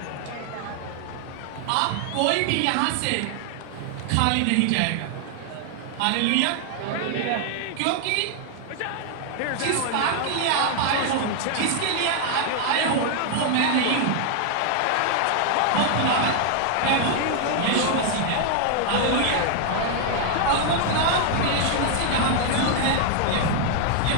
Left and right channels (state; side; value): different; both; correlation 0.00